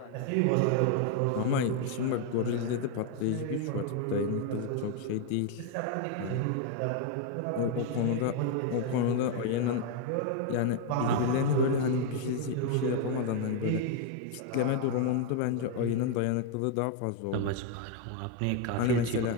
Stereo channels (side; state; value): both; different; correlation 0.01